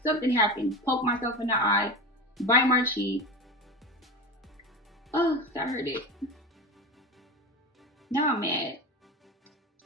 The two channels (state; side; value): normal; both; correlation 0.26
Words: something happens. Poke myself in the eye, bite my cheek. Oh, that hurt it. Now I'm mad.